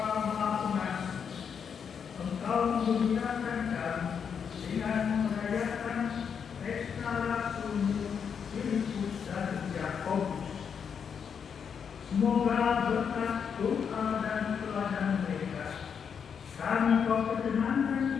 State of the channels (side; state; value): right; quieter; 7.0 dB